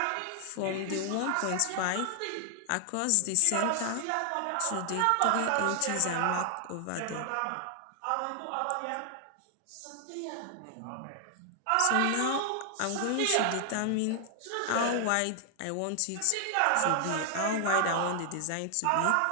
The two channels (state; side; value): different; both; correlation 0.00